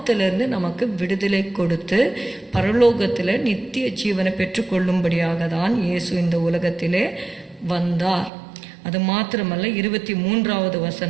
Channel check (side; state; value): left; drops out; at 8.3 s